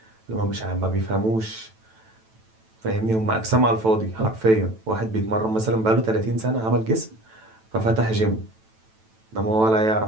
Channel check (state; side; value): late; left; 9.1 ms